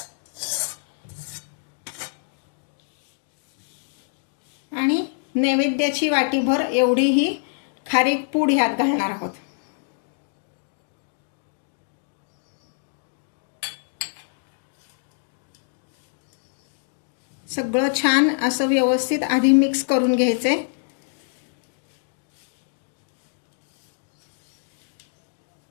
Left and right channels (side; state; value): right; silent; digital silence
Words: आणि नैवेद्याची वाटीभर एवढी ही खारीक पूड ह्यात घालणार आहोत. सगळं छान असं व्यवस्थित आधी मिक्स करून घ्यायचंय.